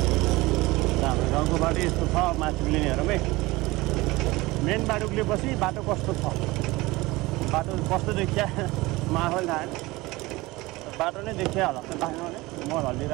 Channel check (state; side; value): quieter; left; 20.8 dB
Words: हाम्रो गाउँको बाटो यस्तो छ माथि लिनेहरूमै मेन बाटो उक्लेपछि बाटो कस्तो छ बाटो कस्तो देखिया माहौल थाहा बाटो नै देखिया होला बाहिर भने मल